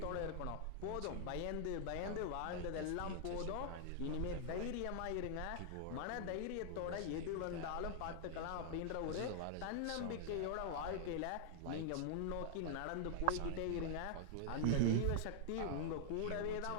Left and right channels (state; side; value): different; both; correlation -0.01